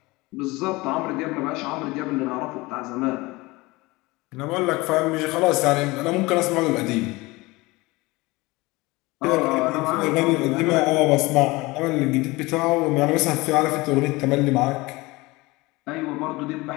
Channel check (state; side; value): quieter; right; 22.2 dB